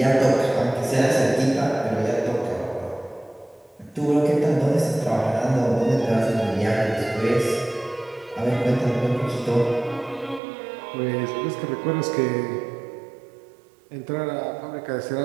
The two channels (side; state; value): left; drops out; at 10.4 s